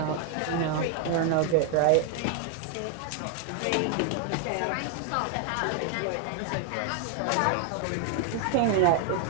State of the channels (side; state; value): both; different; correlation 0.00